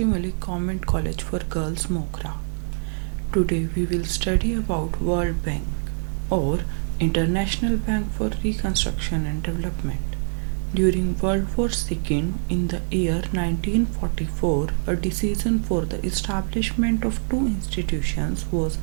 Malik Government College for Girls, Mogra. Today we will study about World Bank or International Bank for Reconstruction and Development. During World War II in the year 1944, a decision for the establishment of two institutions was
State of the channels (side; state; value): left; silent; 62 dB below the other